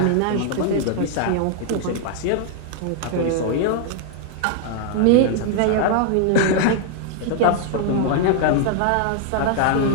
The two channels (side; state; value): both; different; correlation 0.00